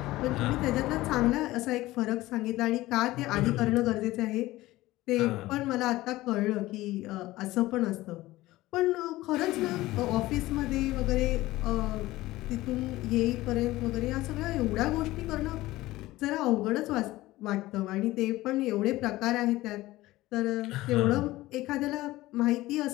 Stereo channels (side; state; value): right; quieter; 17.7 dB